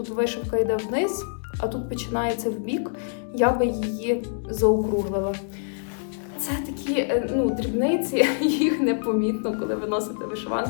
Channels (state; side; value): silent; right; digital silence